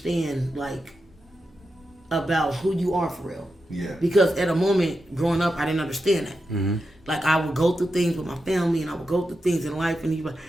like about who you are for real. Yeah. Because at a moment growing up, I didn't understand that. Mm-hmm. Like I would go through things with my family, and I would go through things in life,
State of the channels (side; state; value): both; normal; correlation 0.89